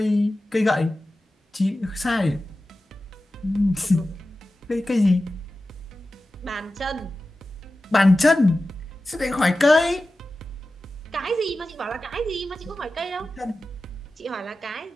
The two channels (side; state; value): both; normal; correlation 0.94